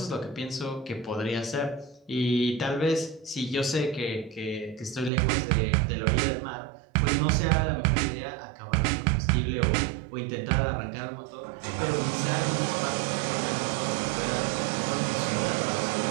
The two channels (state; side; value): drops out; left; at 5.1 s